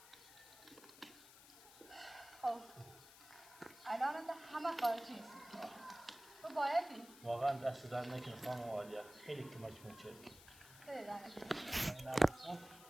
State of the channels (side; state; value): left; noise; hiss, 19 dB below the sound